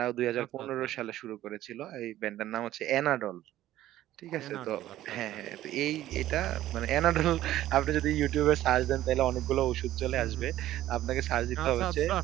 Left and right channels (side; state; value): left; quieter; 13.9 dB